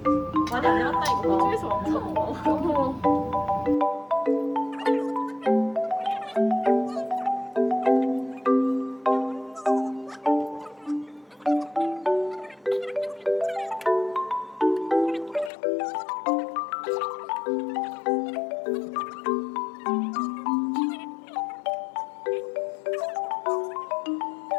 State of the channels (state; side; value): drops out; right; at 15.5 s